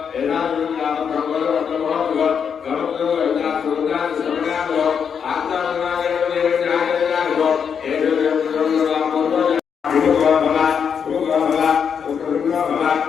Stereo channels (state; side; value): quieter; right; 7.1 dB